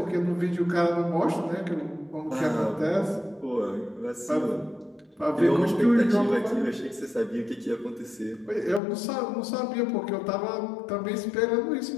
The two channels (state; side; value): drops out; right; at 8.8 s